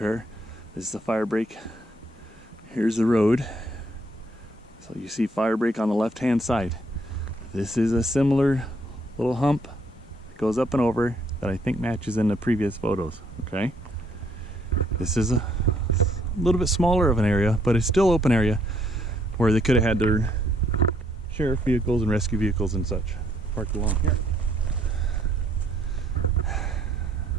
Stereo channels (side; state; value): both; normal; correlation 0.68